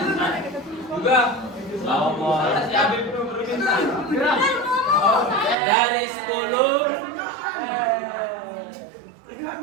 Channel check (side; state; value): left; drops out; at 5.6 s